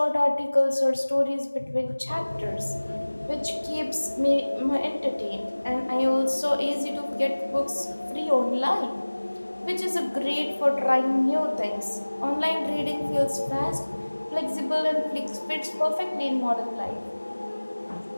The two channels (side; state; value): both; inverted; correlation -1.00